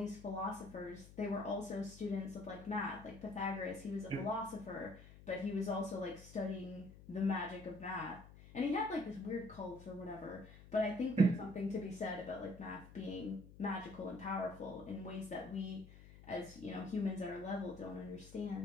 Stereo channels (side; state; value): left; noise; hum, 17 dB below the sound